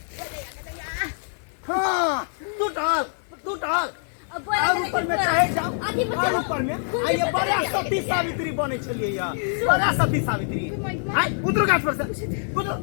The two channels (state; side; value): silent; right; 62 dB below the other